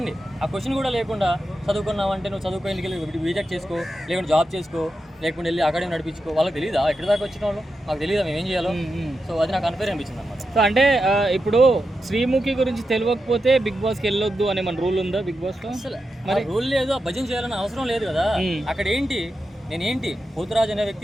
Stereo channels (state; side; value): normal; both; correlation 0.88